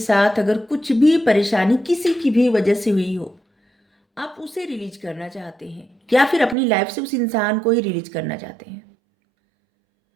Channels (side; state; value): left; drops out; at 6.6 s